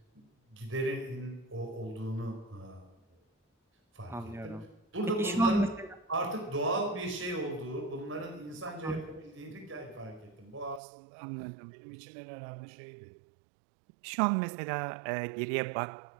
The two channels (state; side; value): drops out; left; at 10.8 s